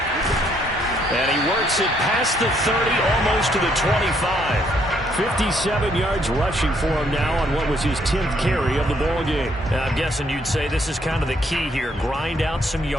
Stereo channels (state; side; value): normal; both; correlation 0.70